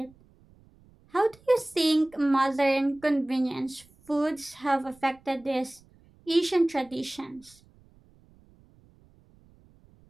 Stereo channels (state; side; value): noise; right; rumble, 29 dB below the sound